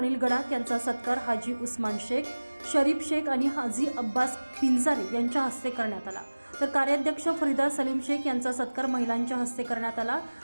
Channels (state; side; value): inverted; both; correlation -1.00